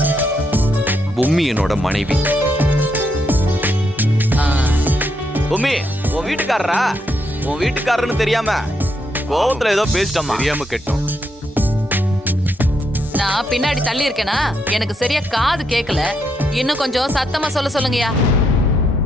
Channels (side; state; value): both; normal; correlation 0.78